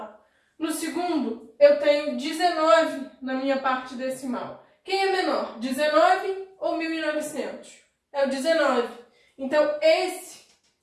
No segundo, eu tenho 19 na minha parte decimal. Quem é menor, 19 ou 1900? É o 19. Então, esse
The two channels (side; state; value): both; identical; correlation 1.00